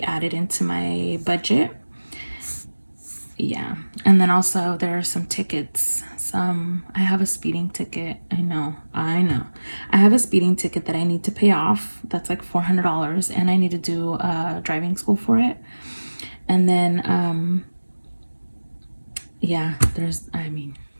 added into my budget. Yeah. And then also there are some tickets. I have a speeding ticket. I know. I have a speeding ticket that I need to pay off. That's like $400, and I need to do driving school for it. And then yeah, I mean,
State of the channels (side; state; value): both; inverted; correlation -1.00